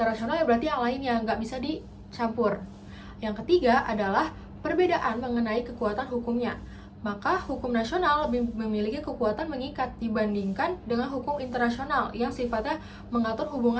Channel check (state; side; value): identical; both; correlation 1.00